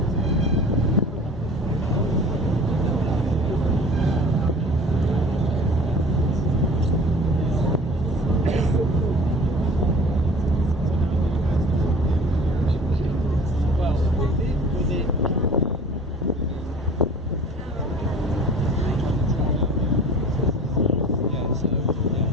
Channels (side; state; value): both; normal; correlation 0.44